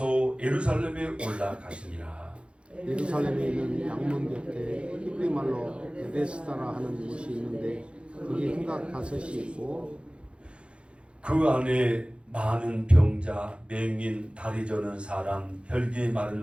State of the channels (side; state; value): left; late; 0.058 ms